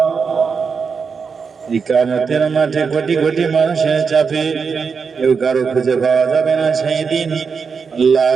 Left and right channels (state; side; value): quieter; left; 5.6 dB